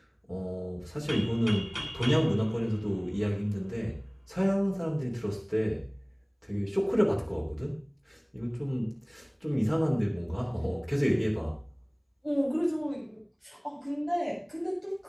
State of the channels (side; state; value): both; identical; correlation 1.00